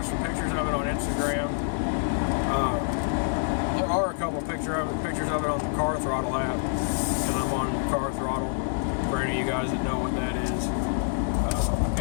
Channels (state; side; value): silent; right; 60 dB below the other